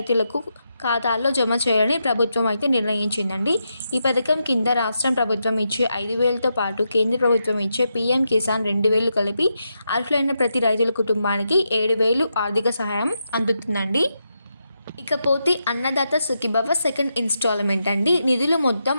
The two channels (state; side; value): inverted; both; correlation -0.85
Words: ఖాతాల్లో జమ చేయాలని ప్రభుత్వం అయితే నిర్ణయించిందండి. ఈ పథకం కింద రాష్ట్రం ప్రభుత్వం ఇచ్చే 5,000తో పాటు కేంద్ర ప్రభుత్వం ఇచ్చే పీఎం కిసాన్ 2,000 కలిపి అర్హులైన ప్రతి రైతుల కుటుంబానికి 7,000 ఆర్థిక సహాయం అందుతుందండి. ఇకపోతే అన్నదాత సుఖీభవ సెకండ్ ఇన్స్టాల్మెంట్ అండి. నిధులు మొత్తం